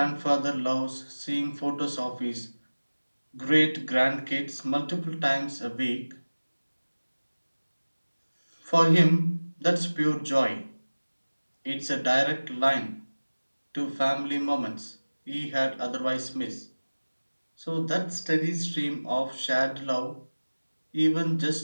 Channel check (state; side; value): inverted; both; correlation -1.00